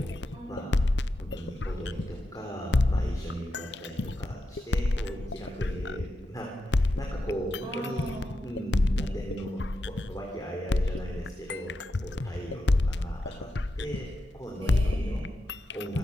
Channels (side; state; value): both; normal; correlation 0.88